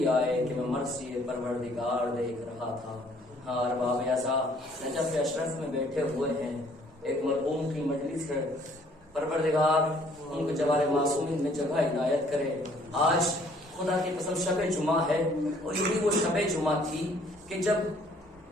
آئے کہ میں مرثی پروردگار دیکھ رہا تھا۔ ہاں ارباب اعزا، نجف اشرف میں بیٹھے ہوئے ہیں، ایک مرحوم کی مجلس ہے، پروردگار ان کو جوار معصومین میں جگہ عنایت کرے۔ آج خدا کی قسم شب جمعہ ہے، اور یہی وہ شب جمعہ تھی کہ جب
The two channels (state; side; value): normal; both; correlation 0.60